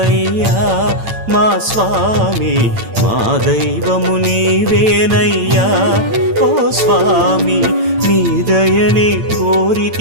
మా స్వామి, మా దైవము నీవేనయ్యా ఓ స్వామి. నీ దయని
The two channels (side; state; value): left; late; 8.9 ms